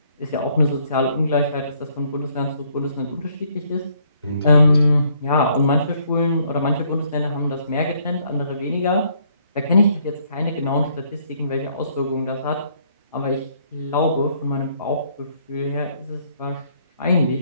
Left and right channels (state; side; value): inverted; both; correlation -0.67